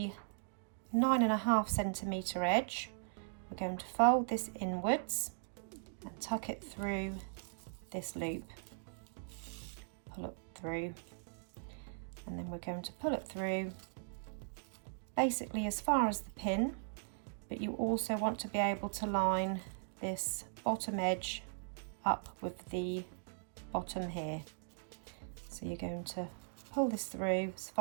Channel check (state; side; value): silent; left; digital silence